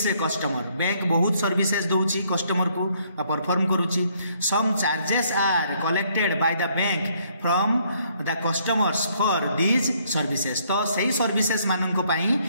customer. Bank बहुत सर्विसेज दौची कस्टमर को परफॉर्म करुची। Some charges are collected by the bank from the customers for these services. तो सही सर्विसेज मानक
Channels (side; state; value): both; inverted; correlation -0.67